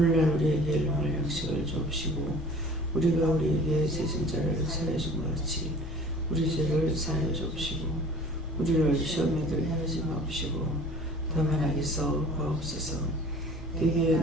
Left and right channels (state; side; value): normal; both; correlation 0.46